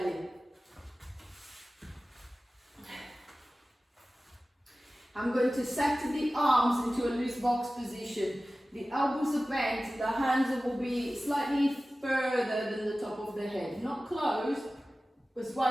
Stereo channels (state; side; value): normal; both; correlation 0.96